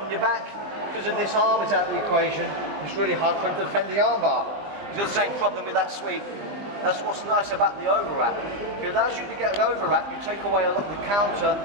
your back? Because of this arm is out of the equation, it's really hard for him to defend the arm bar. He's got the same problem with that sweep. That's what's nice about the overwrap. If it allows you to get an overwrap, you take away a lot of the counter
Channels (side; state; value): left; late; 20 ms